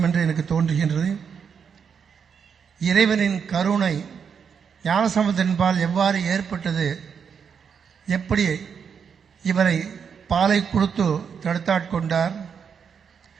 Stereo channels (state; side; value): quieter; left; 6.8 dB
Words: என்று எனக்கு தோன்றுகின்றது. இறைவனின் கருணை ஞானசம்பந்தரின்பால் எவ்வாறு ஏற்பட்டது, எப்படி இவரை பாலை கொடுத்து தடுத்தாட்கொண்டார்,